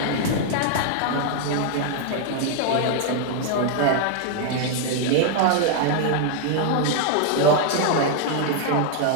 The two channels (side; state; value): both; different; correlation 0.00